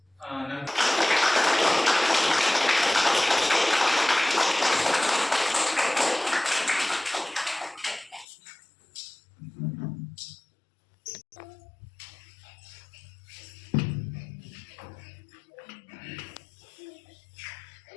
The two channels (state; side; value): drops out; right; at 8.2 s